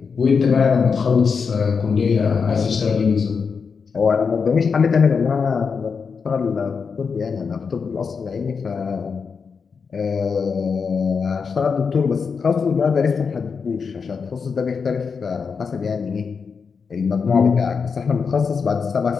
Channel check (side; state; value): right; quieter; 5.6 dB